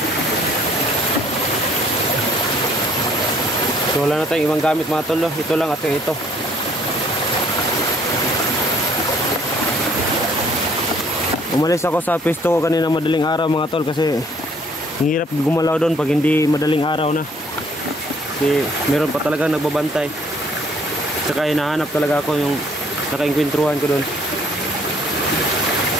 So wala na tayong ibang gamit mga tol, ito lang at ito. Umalis ako sa pisto ko kanina madaling araw mga tol kasi hirap gumalaw doon pag hindi madaling araw na. Kasi meron pa talaga nagbabantay. Tsaka hinahanap talaga ako yung nakainkwentruhan ko doon.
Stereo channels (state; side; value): normal; both; correlation 0.61